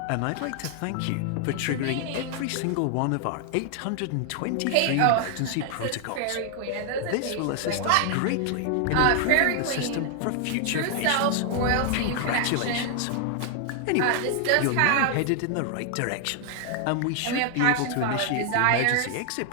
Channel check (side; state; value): both; different; correlation 0.00